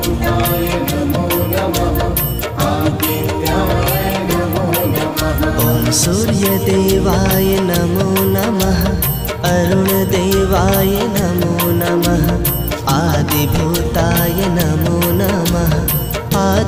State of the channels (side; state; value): both; identical; correlation 1.00